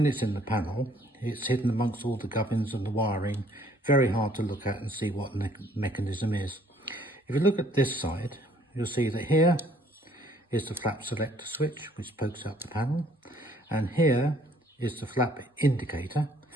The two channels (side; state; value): both; normal; correlation 0.61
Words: it's in the panel, it's hidden amongst all the gubbins and the wiring, very hard to look at and see what the mechanism is. If you look at this side, you'll see that here is the flap selector switch, which pokes out the panel, and here is the flap indicator,